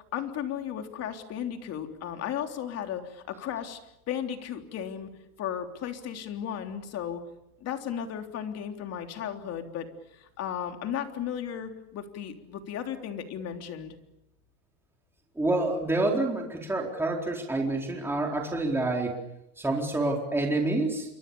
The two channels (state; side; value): normal; both; correlation 0.46